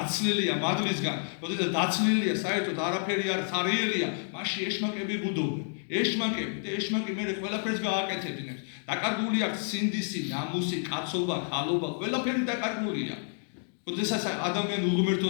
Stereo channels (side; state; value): right; silent; digital silence